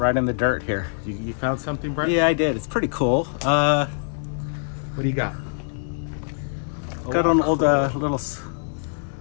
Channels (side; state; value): right; silent; 63 dB below the other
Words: in the dirt here. You found something, Bright? Yeah, I did. It's pretty cool. What do you got? Got an old little